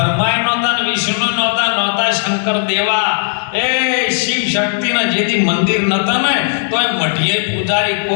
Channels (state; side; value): silent; right; digital silence